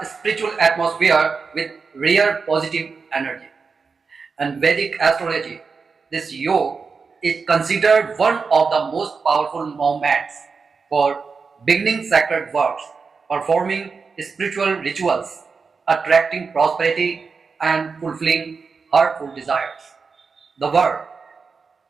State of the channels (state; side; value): quieter; left; 5.0 dB